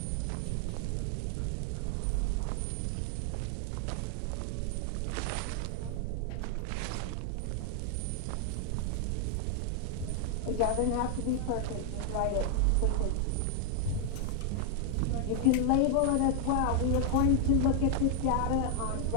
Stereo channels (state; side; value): different; both; correlation 0.00